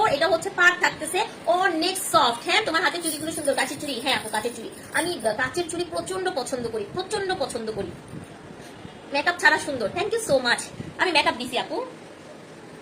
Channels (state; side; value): identical; both; correlation 1.00